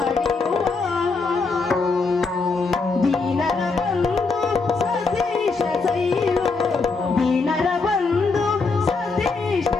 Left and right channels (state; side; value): quieter; right; 4.2 dB